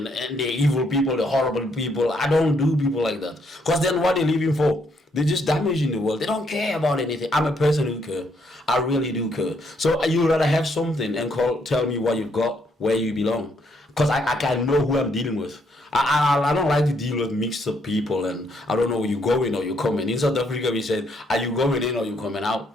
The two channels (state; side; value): normal; both; correlation 0.72